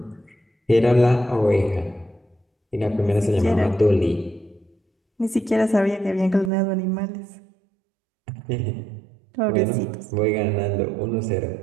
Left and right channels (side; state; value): left; drops out; at 6.5 s